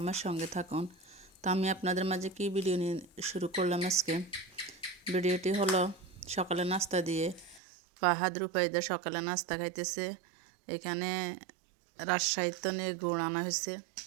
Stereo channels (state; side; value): drops out; left; at 7.6 s